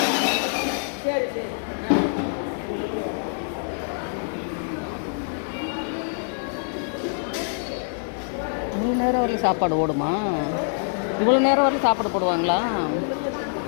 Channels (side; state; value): right; silent; digital silence